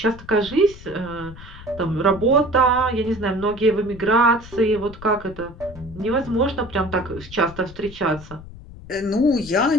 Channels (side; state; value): left; noise; rumble, 16 dB below the sound